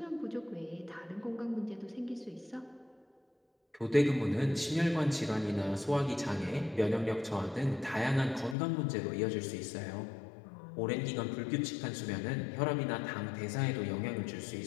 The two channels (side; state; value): right; drops out; at 8.6 s